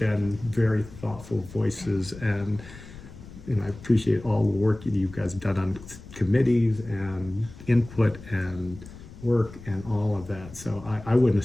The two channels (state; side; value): noise; left; rumble, 17 dB below the sound